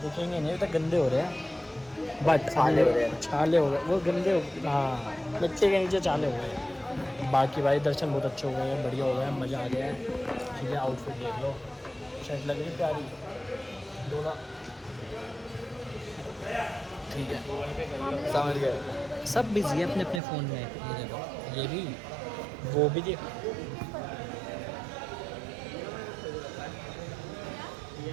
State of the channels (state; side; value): drops out; left; at 20.2 s